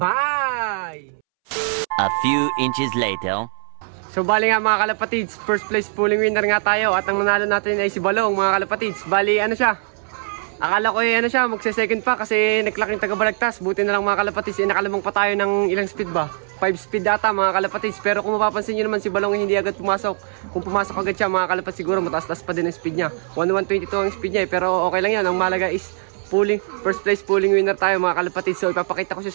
A few inches later. So bali nga mga kalapatids, first place pooling winner nga tayo. At ang nanalo natin ay si Balong mga kalapatids. Bali ano siya, akala ko ano siya, magse-second pa kasi naklaking taga-balagtas. Buti na lang mga kalapatids, nakalamang pa tayo ng ilang speed ba? 5 speed data mga kalapatids. Pero kung mapapansin nyo naman si Balong hindi agad pumasok. Kung pumasok agad siya mga kalapatids, siguro mataas-taas pa din ang speed niya. 1122 ang speed niya pero okay lang yan. Ang malaga is first place pooling winner tayo mga kalapatids. So ipapakita ko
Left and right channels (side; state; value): left; silent; 65 dB below the other